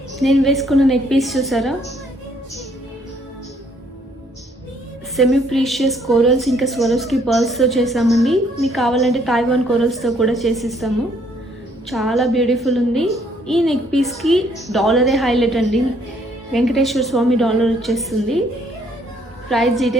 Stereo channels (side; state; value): both; normal; correlation 0.66